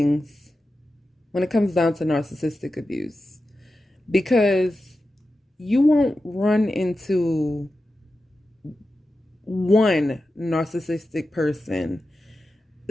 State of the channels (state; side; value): normal; both; correlation 0.92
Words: when it comes down to narcissistic abuse, because you won't run into one narcissistic person